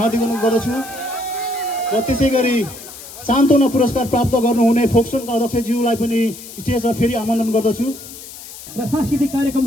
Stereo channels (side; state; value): left; noise; hiss, 15 dB below the sound